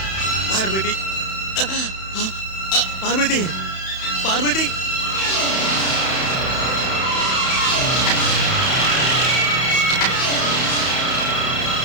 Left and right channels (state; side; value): late; right; 31 ms